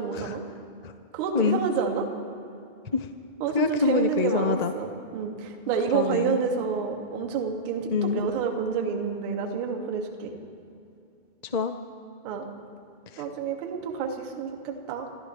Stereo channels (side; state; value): left; late; 2.2 ms